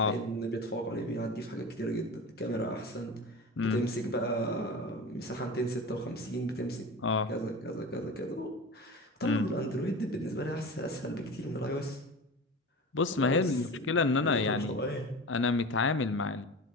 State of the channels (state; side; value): normal; both; correlation 0.31